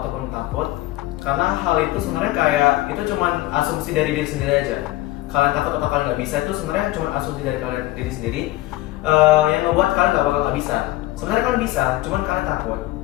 ataupun takut, karena hal itu sebenarnya kayak itu cuman asumsi dari diri sendiri aja. Kalian takut atau kalian nggak bisa itu sebenarnya cuma asumsi dari kalian diri sendiri yang membuat kalian nggak bisa. Sebenarnya kalian bisa, cuman kalian takut.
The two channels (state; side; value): quieter; right; 17.4 dB